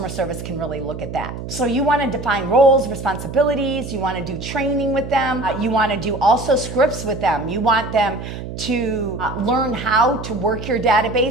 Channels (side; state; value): right; noise; hum, 9 dB below the sound